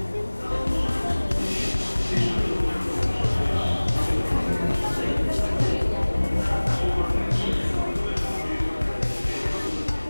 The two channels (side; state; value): both; inverted; correlation -1.00